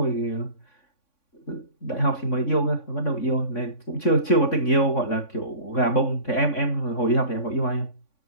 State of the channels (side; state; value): right; late; 3.6 ms